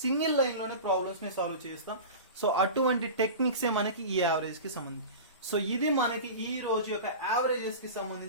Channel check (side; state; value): both; inverted; correlation -0.31